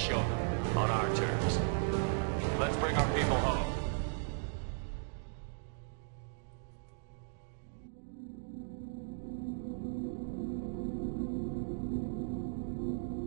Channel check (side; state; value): left; silent; digital silence